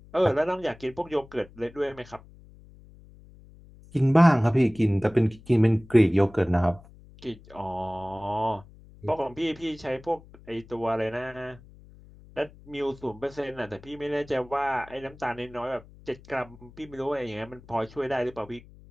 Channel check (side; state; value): left; noise; hum, 22 dB below the sound